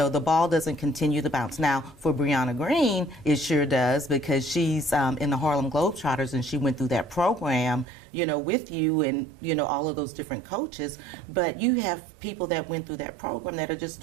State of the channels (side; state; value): left; drops out; at 7.9 s